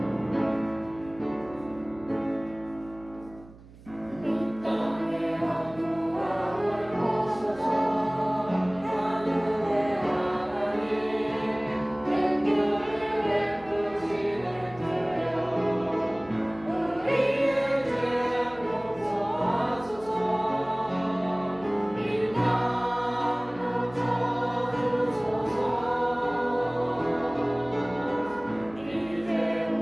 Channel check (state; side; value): noise; right; hum, 21 dB below the sound